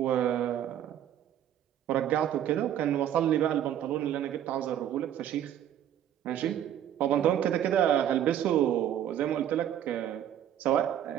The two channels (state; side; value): quieter; left; 10.6 dB